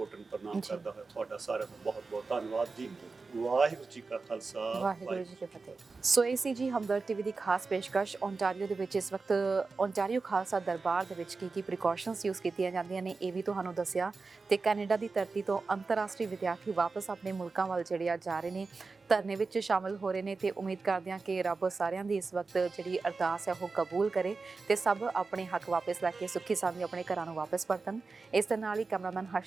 ਪ੍ਰਣਾਮ ਕਰਦਾ ਹੋਇਆ ਤੁਹਾਡਾ ਸਾਰਿਆਂ ਦਾ ਬਹੁਤ ਬਹੁਤ ਧੰਨਵਾਦ ਜੀ। ਵਾਹਿਗੁਰੂ ਜੀ ਕਾ ਖਾਲਸਾ, ਵਾਹਿਗੁਰੂ ਜੀ ਕੀ ਫਤਿਹ। ਸੋ ਇਹ ਸੀ ਜੀ ਹਮਦਰਦ ਟੀਵੀ ਦੀ ਖਾਸ ਪੇਸ਼ਕਸ਼। ਓਂਟਾਰੀਓ ਦੇ ਵਿੱਚ ਇਸ ਵਕਤ ਓਂਟਾਰੀਓ ਖਾਲਸਾ ਦਰਬਾਰ ਦੇ ਵਿੱਚ ਕੀ ਪ੍ਰੀਕਾਸ਼ਨਸ ਯੂਜ਼ ਕੀਤੀਆਂ ਜਾਂਦੀਆਂ ਨੇ ਇਹ ਵੀ ਤੁਹਾਨੂੰ ਦੱਸਿਆ। ਤੇ ਕੈਨੇਡਾ ਦੀ ਧਰਤੀ ਤੋਂ ਅੰਤਰਰਾਸ਼ਟਰੀ ਵਿਦਿਆਰਥੀ ਵਾਪਸ ਆਪਣੇ ਮੁਲਕਾਂ ਵੱਲ ਜਿਹੜੇ ਆ ਜਾ ਰਹੇ ਨੇ, ਧਰਨੇ ਵਿੱਚ ਸ਼ਾਮਲ ਹੋ ਰਹੇ ਨੇ। ਤੇ ਉਮੀਦ ਕਰਦੇ ਹਾਂ ਕਿ ਰੱਬ ਸਾਰਿਆਂ ਦੀ ਇਸ ਵਕਤ ਜਿਹੜੀ ਅਰਦਾਸ ਹੈ ਉਹ ਕਬੂਲ ਕਰੇ ਤੇ ਸਭ ਆਪਣੇ ਹੱਕ ਵਾਪਸ ਲੈ ਕੇ ਸੁੱਖੀ ਸਾਂਦੀ ਆਪਣੇ ਘਰਾਂ ਨੂੰ ਵਾਪਸ ਪਰਤਣ। ਇਸ ਦੇ ਨਾਲ ਹੀ ਕੈਮਰਾਮੈਨ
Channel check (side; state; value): left; quieter; 4.2 dB